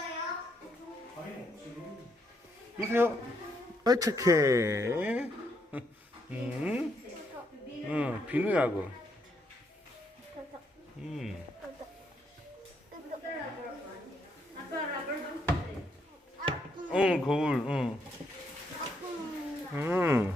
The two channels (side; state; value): both; normal; correlation 0.75